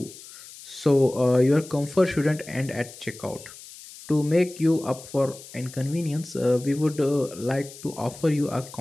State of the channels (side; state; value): left; noise; hiss, 17 dB below the sound